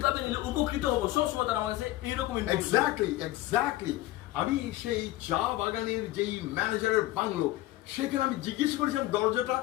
নিলে উপকৃত হবো, সব সময় তারা আমার কাছে এইরকম এক্স্যাক্টলি আমি সেই চা বাগানের যেই ম্যানেজারের বাংলো, সেখানে আমি জিজ্ঞেস করেছিলাম দরজাটা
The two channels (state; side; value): quieter; right; 16.7 dB